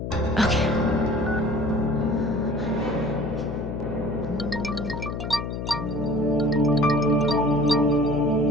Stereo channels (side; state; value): left; noise; hum, 5 dB below the sound